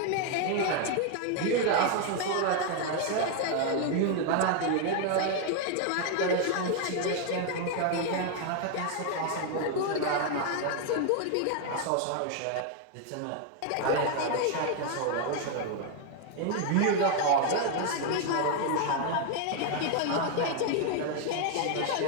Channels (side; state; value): both; different; correlation 0.00